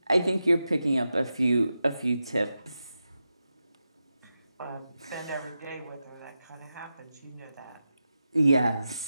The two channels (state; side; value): inverted; both; correlation -0.90